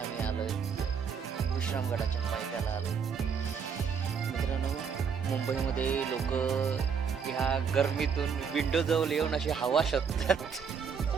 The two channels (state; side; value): quieter; left; 6.5 dB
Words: आम्ही आलोय विश्रामगडाच्या पायथ्याला आलो. मित्रांनो, मुंबईमध्ये लोक ह्या गरमीतून विंडो जवळ येऊन अशी हवा शोधतात.